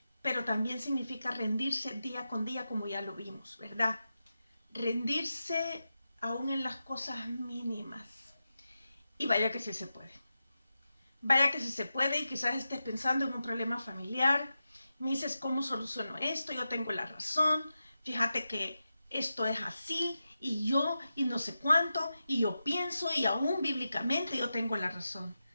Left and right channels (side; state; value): both; inverted; correlation -0.91